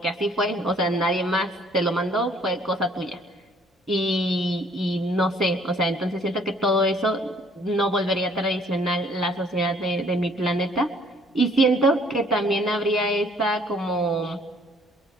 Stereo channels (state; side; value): normal; both; correlation 0.60